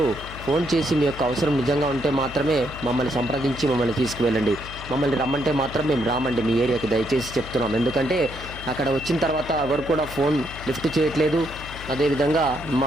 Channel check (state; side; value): noise; left; hum, 13 dB below the sound